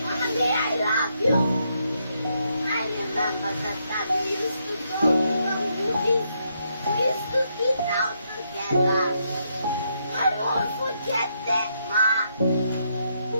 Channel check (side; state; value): both; inverted; correlation -0.77